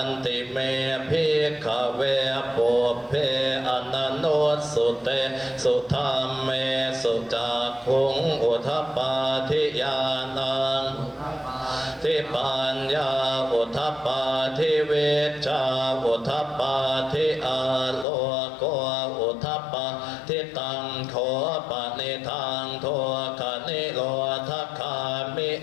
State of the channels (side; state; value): right; drops out; at 18.1 s